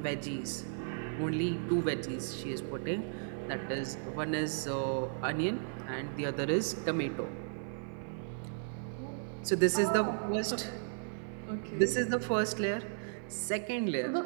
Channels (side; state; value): left; silent; 54 dB below the other